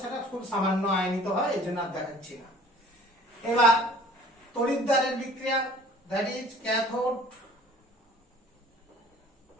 সেটা খুব সামান্য আয়নিত হয়, এই জন্য আর দেখাচ্ছি না। এবার তড়িৎদ্বারের বিক্রিয়া, দ্যাট ইজ ক্যাথোড।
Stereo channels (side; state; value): both; normal; correlation 0.50